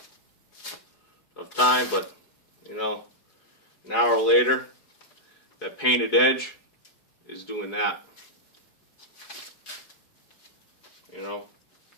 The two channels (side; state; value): right; late; 4.8 ms